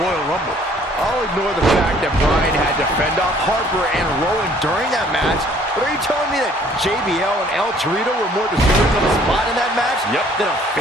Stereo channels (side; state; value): both; normal; correlation 0.58